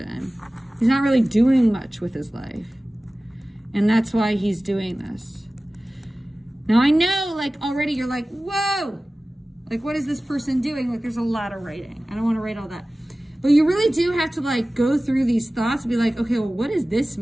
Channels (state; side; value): normal; both; correlation 0.97